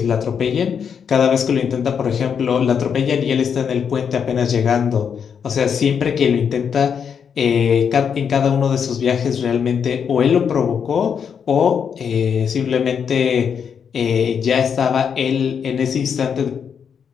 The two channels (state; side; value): quieter; right; 7.2 dB